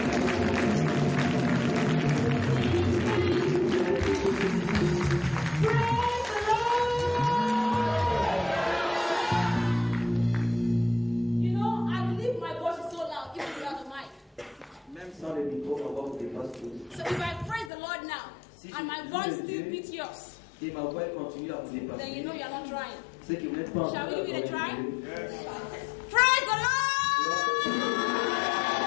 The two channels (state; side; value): drops out; right; at 17.7 s